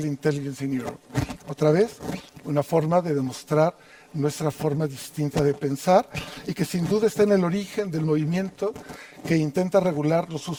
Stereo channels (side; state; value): both; identical; correlation 1.00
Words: Intelligence in Europe. Otra vez, una forma de demostrar nuestra forma distinta de pensar y que sin duda está en el origen del movimiento que intenta regular los